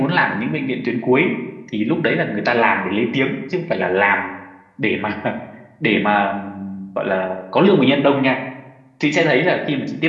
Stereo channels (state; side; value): identical; both; correlation 1.00